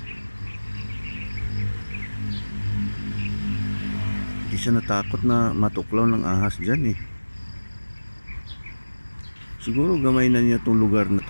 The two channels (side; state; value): both; inverted; correlation -1.00